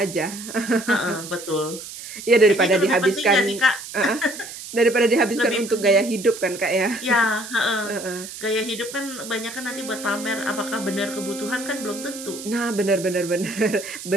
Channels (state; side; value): noise; right; hiss, 12 dB below the sound